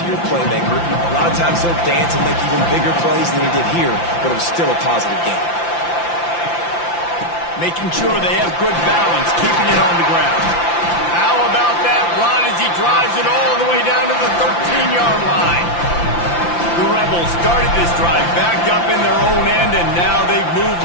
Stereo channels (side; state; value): right; late; 5.8 ms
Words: your playmaker. A lot of times he'll dance and make even bigger plays than he did here, but it was still a positive game. Making sure they have good balance, keeping it on the ground. How about that run as he drives it all the way down to the 13-yard line? The Rebels started this drive backed up in their own end, and now they've